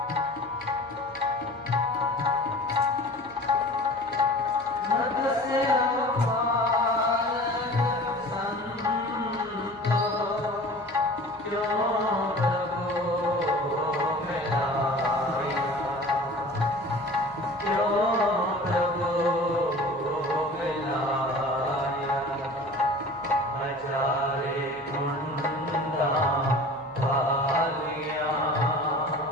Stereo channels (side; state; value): left; noise; hum, 27 dB below the sound